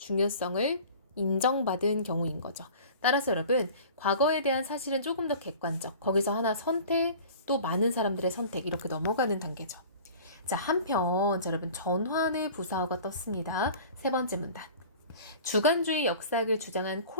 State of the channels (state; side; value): inverted; both; correlation -0.43